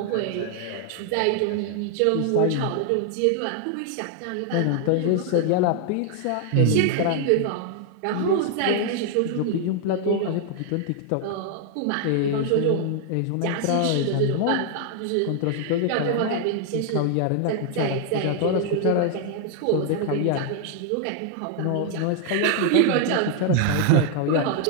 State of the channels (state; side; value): different; both; correlation 0.00